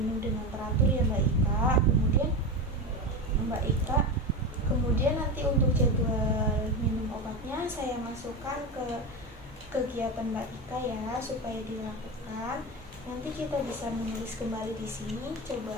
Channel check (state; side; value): normal; both; correlation 0.20